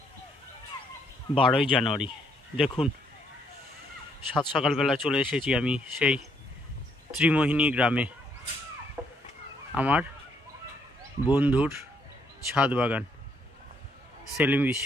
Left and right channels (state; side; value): normal; both; correlation 0.71